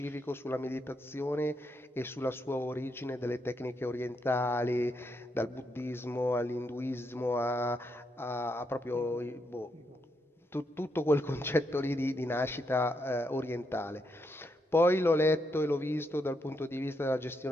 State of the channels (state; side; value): normal; both; correlation 0.80